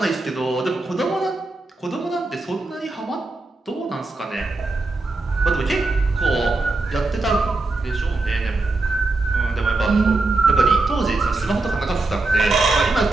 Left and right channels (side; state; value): left; quieter; 3.3 dB